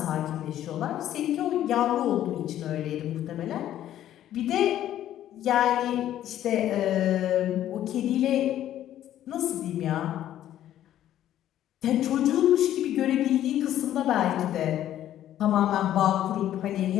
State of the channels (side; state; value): right; quieter; 12.0 dB